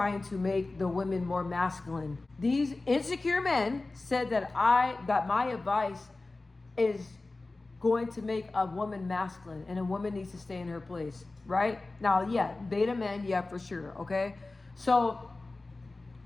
to make the women more masculine. These insecure men said that my advice is going to make a woman masculine and a woman needs to stay in her place, right? Now, yeah, beta men, yeah, for sure, okay? So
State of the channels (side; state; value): right; quieter; 3.3 dB